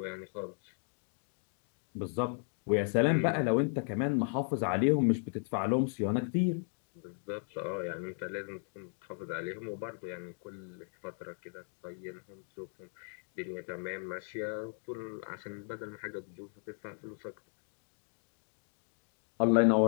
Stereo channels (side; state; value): right; silent; 54 dB below the other